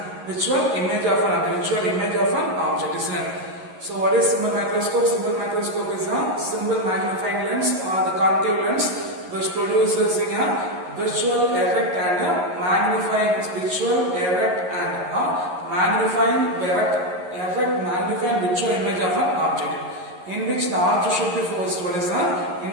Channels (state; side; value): late; left; 11 ms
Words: Virtual image of an object, isn't it? So what is simple microscope? Simple microscope is a simple magnifying lens or the concave lens which produces a virtual erect and a magnifying virtual erect and a magnifying virtual image of an object, in which the object should be focused. What is that?